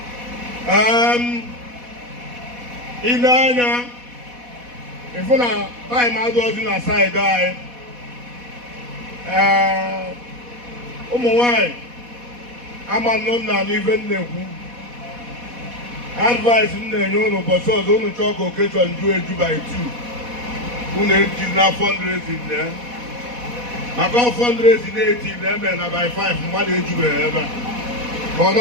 Ile anya ịfụ na taịm adịghịzi na saịdị anyị. Ụmụ nwanyị ama nnụ m na n'ife m na-ekwu. Advice m na-enye unu ụbọchị ọzọ unu chọọ ka okechọn ju eju by 2 unu eji na fundraising na maka fundraising na-eti na eme na by 5 mmadụ ejubeghị ebe a ka ọ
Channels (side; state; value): left; late; 4.1 ms